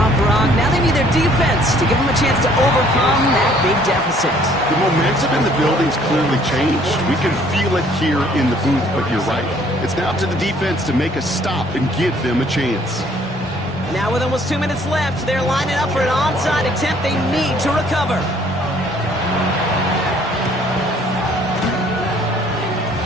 Brock. Now they need their defense to give them a chance to overcome that big deficit. The momentum in the building's clearly changed. We can feel it here in the booth, but you're right. It's now up to the defense to make a stop and give them a chance. Now with almost 2 minutes left, they're lining up for an onside attempt they need to recover.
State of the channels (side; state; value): both; normal; correlation 0.60